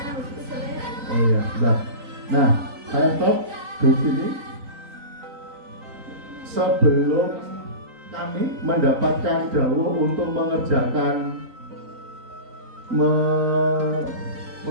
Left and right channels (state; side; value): late; left; 3.9 ms